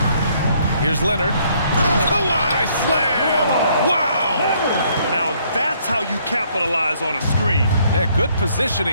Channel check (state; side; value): inverted; both; correlation -0.67